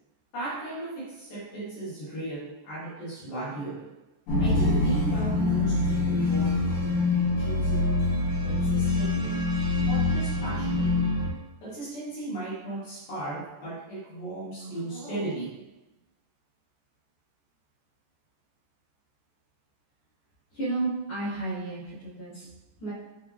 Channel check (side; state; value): right; late; 14 ms